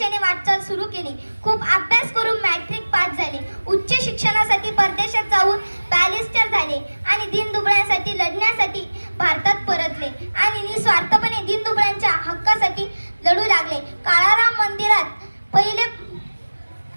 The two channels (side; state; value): both; inverted; correlation -1.00